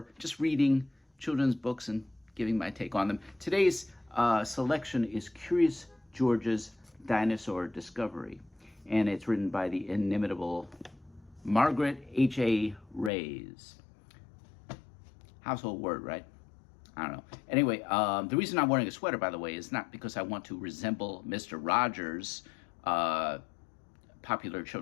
just reading children's books and giving my take on them. Today's selection is Curious George's Dinosaur Discovery, and it's written by the inimitable Margaret H.A. Reyes. Household word, right? I don't know. Anyway, the reason I'm wearing a sweater, by the way, is not because I want to resemble Mr. Rogers, popular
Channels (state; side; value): drops out; right; at 13.1 s